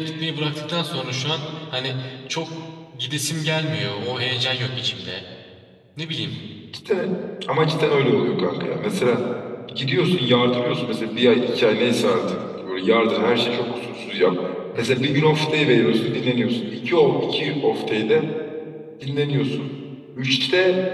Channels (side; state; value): both; identical; correlation 1.00